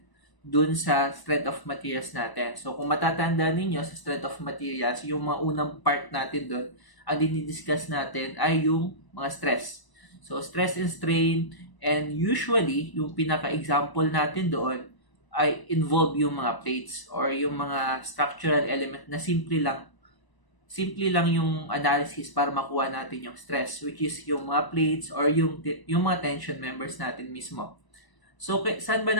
dun sa strength of materials natin. So, kung matatanda ninyo sa strength of materials, yung mga unang part natin dun, ang dinidiscuss natin ay yung mga stress. So, stress and strain, and usually, yung pinaka-example natin doon ay involve yung mga plates or yung mga structural element na simple lang yung analysis para makuha natin yung stress, which is yung mga plates or yung mga tension members natin mismo. So, saan ba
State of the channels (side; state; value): right; late; 1.0 ms